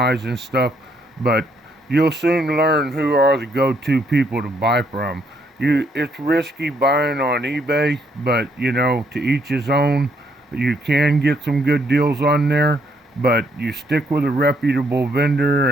and stuff, but you'll soon learn who are the go-to people to buy from. It's risky buying on eBay, but to each his own. You can get some good deals on there, but you stick with a reputable vendor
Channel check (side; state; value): both; normal; correlation 0.71